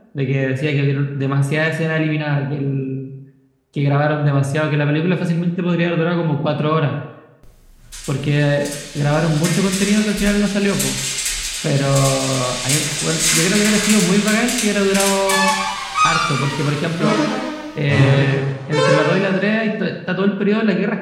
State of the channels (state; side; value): identical; both; correlation 1.00